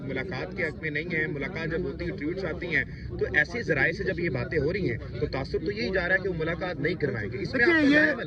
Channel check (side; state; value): both; identical; correlation 1.00